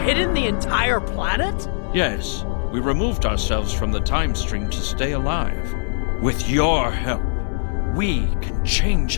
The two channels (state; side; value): silent; right; digital silence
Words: hidden the entire planet? Yes, we removed ourselves from the time stream to stay alive. With your help, we can change